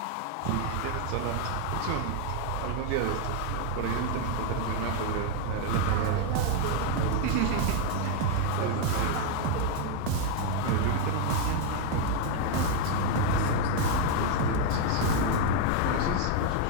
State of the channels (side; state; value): both; different; correlation 0.00